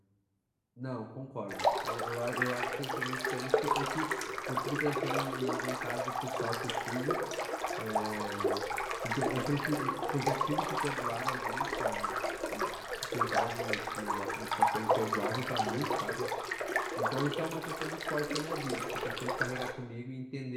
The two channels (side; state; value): both; identical; correlation 1.00